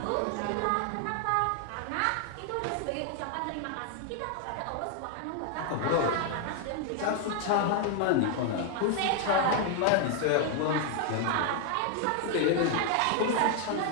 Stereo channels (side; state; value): both; different; correlation 0.00